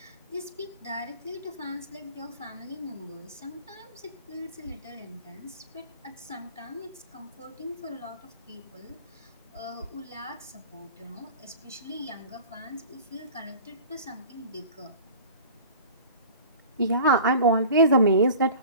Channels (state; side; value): inverted; both; correlation -0.42